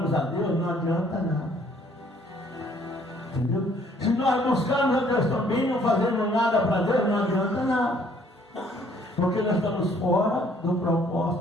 a Deus, não adianta nada. Entendeu? Se nós buscarmos a Deus também, não fazemos nada para Deus, não adianta nada. Porque nós estamos fora do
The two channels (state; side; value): normal; both; correlation 0.62